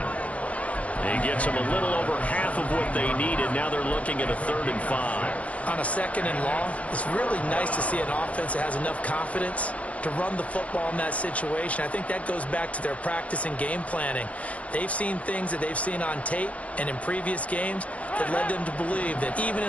He gets them a little over half of what they needed. Now they're looking at a 3rd and 5. On a 2nd and long, it's really nice to see an offense that has enough confidence to run the football in that situation. I think that goes back to their practice and game planning. They've seen things that they've seen on tape and in previous games that led them to believe that even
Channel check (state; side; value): late; right; 0.066 ms